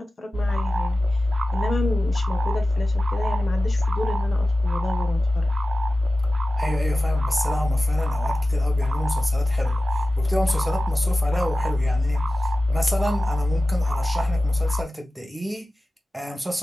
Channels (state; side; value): normal; both; correlation 0.95